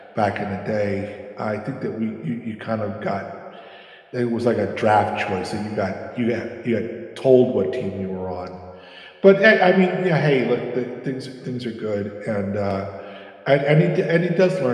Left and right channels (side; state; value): both; identical; correlation 1.00